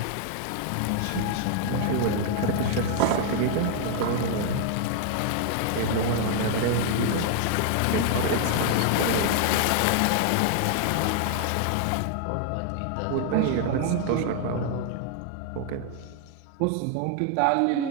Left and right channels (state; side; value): different; both; correlation 0.00